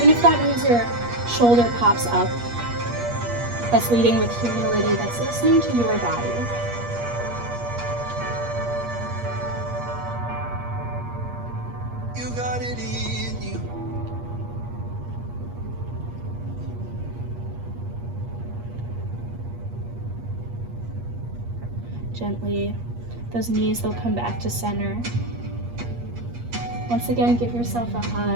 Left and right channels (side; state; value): left; late; 8.4 ms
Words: if that means your shoulder pops up. That's leading with humility, that's listening to your body. You got it in you. Gently, those knees, they'll come back to center. Once again, give yourself a